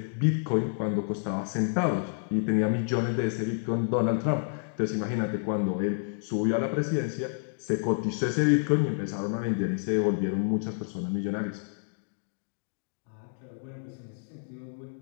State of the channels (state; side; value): silent; right; digital silence